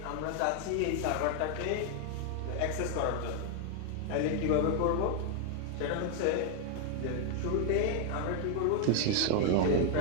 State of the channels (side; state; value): both; different; correlation 0.00